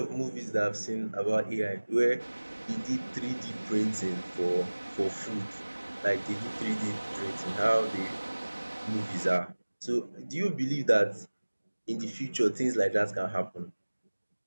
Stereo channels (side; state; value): both; inverted; correlation -1.00